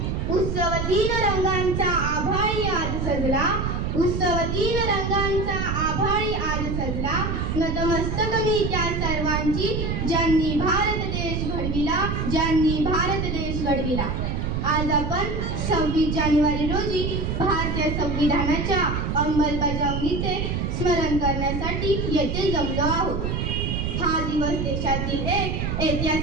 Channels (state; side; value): noise; right; rumble, 1 dB below the sound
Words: उत्सव 3 रंगांचा आभाळी आज सजला, उत्सव 3 रंगांचा आभाळी आज सजला, नतमस्तक मी त्या सर्वांची ज्यांनी भारत देश घडविला, ज्यांनी भारत देश घडविला। आज आपण 26 जानेवारी रोजी भारतीय संविधानाच्या अंमलबजावणीचे स्मरण करण्यासाठी येथे जमलो आहोत। हा दिवस देशातील एक